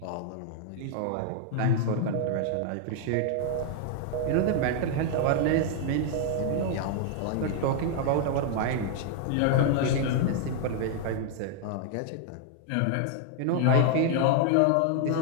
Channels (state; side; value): different; both; correlation 0.00